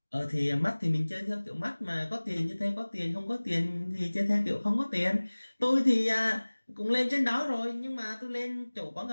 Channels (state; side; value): inverted; both; correlation -1.00